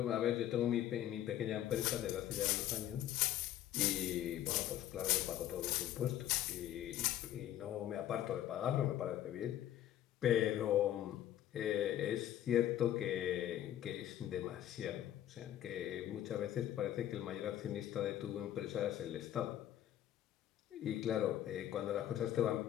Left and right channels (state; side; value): quieter; right; 12.0 dB